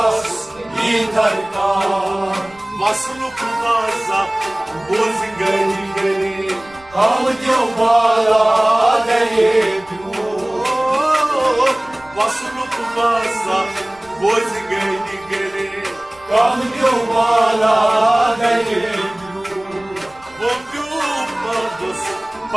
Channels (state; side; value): noise; right; rumble, 27 dB below the sound